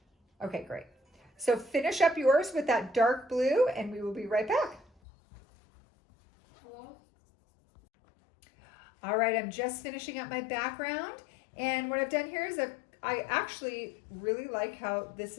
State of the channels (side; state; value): right; drops out; at 4.9 s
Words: Okay, great. So finish up yours with that dark blue, and we will be right back. Hello? All right, I'm just finishing up my background, and what I've done here is I actually really like how this